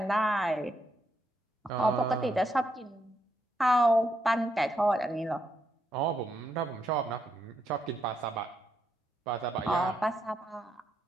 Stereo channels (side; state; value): both; normal; correlation 0.79